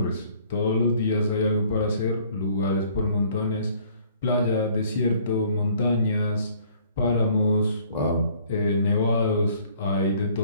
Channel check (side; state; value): both; inverted; correlation -0.58